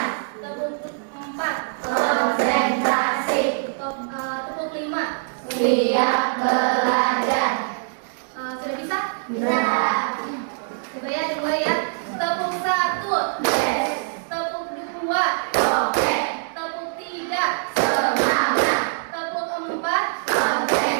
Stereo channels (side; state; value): left; silent; digital silence